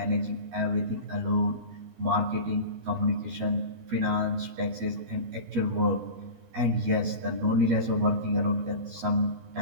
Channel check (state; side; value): late; left; 13 ms